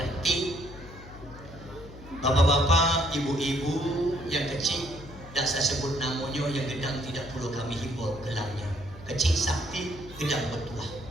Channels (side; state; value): left; noise; hum, 17 dB below the sound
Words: Bapak-bapak, ibu-ibu yang kecil, tidak saya sebut namanya, yang gedang tidak perlu kami himbau gelangnya. Kecil sakti, gedang bertuah.